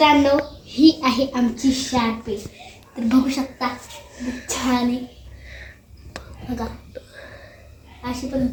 ही आहे आमची शार्पे. तर बघू शकता छान आहे बघा, अशी पण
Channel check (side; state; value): both; identical; correlation 1.00